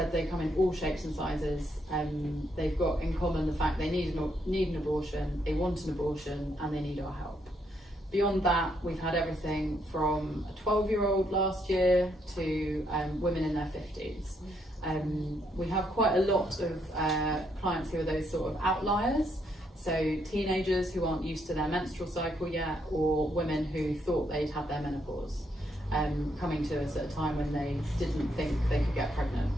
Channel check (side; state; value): both; normal; correlation 0.75